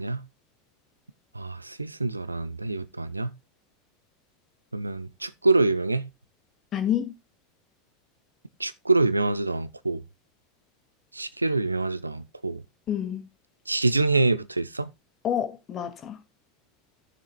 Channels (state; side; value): inverted; both; correlation -0.74